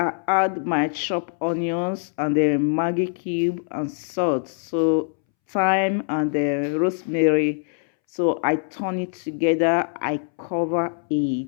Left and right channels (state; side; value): silent; right; 63 dB below the other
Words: add my chopped onions and the Maggi cube and salt. So thyme and the rosemary. So I turn it together. I cover